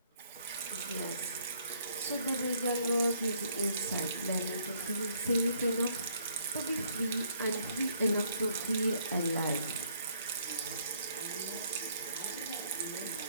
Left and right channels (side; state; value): both; inverted; correlation -0.66